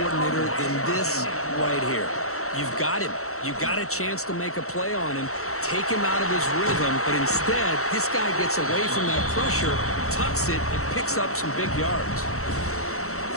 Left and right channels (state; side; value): late; right; 0.64 ms